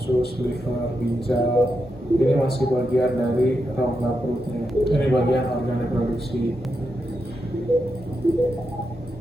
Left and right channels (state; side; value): normal; both; correlation 0.85